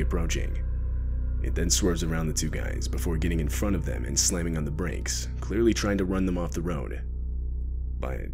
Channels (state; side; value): identical; both; correlation 1.00